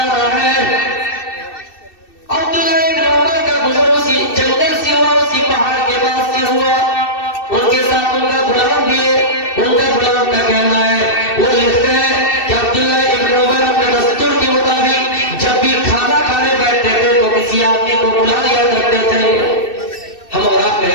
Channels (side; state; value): right; late; 2.6 ms